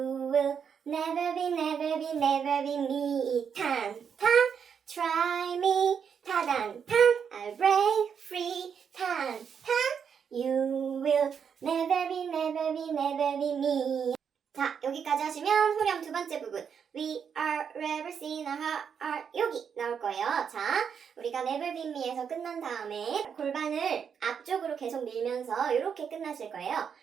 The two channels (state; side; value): quieter; left; 7.2 dB